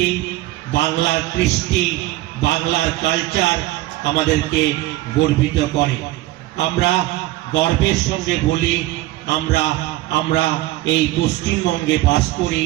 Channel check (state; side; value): quieter; left; 17.1 dB